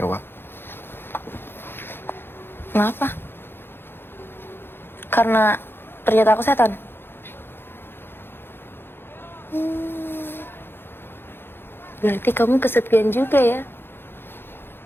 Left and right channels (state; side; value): late; right; 0.10 ms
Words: Kenapa? Karena ternyata aku setan. Berarti kamu kesepian juga ya?